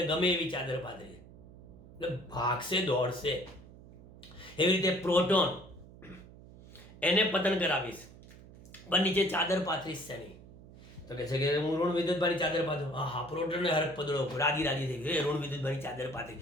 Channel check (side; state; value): right; noise; hum, 20 dB below the sound